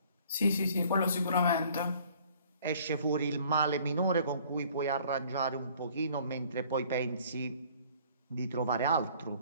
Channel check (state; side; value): inverted; both; correlation -0.55